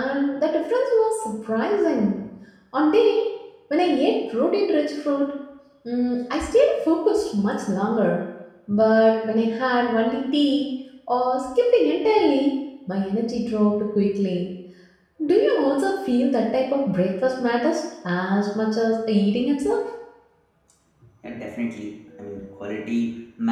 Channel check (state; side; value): identical; both; correlation 1.00